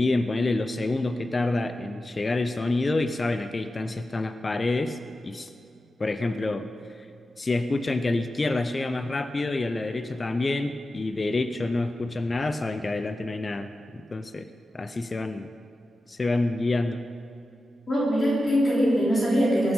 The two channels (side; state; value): both; normal; correlation 0.93